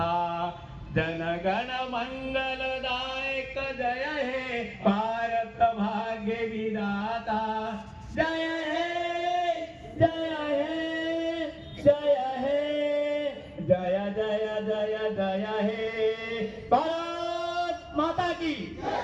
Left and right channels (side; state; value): both; identical; correlation 1.00